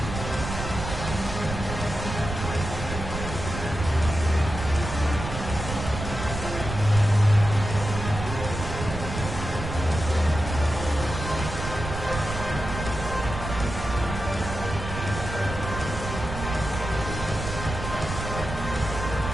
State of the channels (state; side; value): noise; right; rumble, 6 dB below the sound